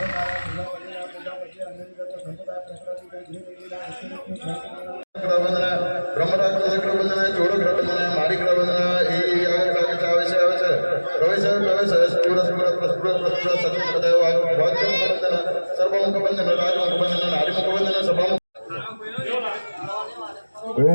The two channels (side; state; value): both; inverted; correlation -1.00